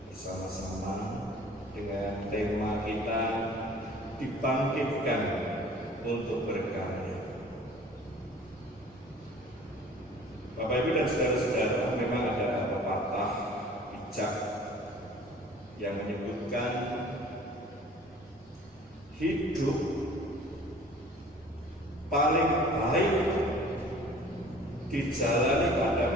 bersama-sama dengan tema kita dibangkitkan untuk berkarya. Bapak Ibu dan saudara-saudara, memang ada pepatah bijak yang menyebutkan hidup paling baik dijalani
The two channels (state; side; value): normal; both; correlation 0.48